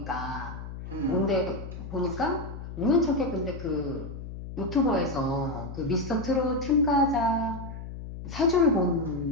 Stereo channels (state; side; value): noise; left; hum, 10 dB below the sound